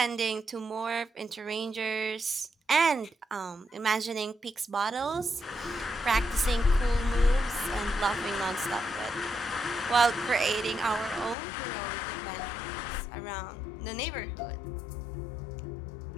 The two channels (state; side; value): drops out; right; at 11.4 s